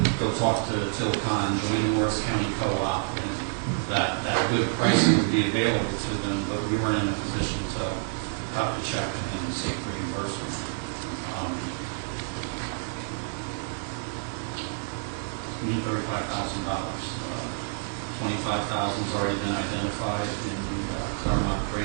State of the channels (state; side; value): silent; left; 59 dB below the other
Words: go talk to Tilcon, join the Morris County Co-op, and that good pricing would be available to them, but we weren't in a position to cut the check and seek reimbursement. We need $35,000. $25,000 has already been identified in the Claremont